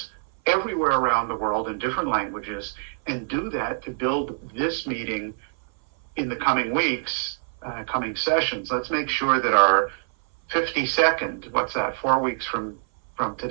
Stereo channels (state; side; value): silent; left; 58 dB below the other